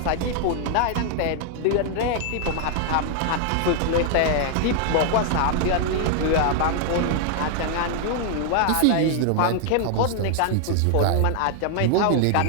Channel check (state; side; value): different; both; correlation 0.00